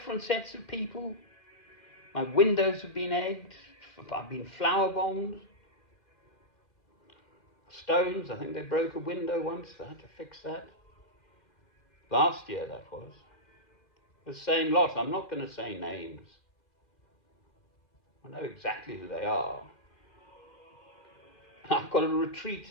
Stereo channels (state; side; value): late; right; 2.2 ms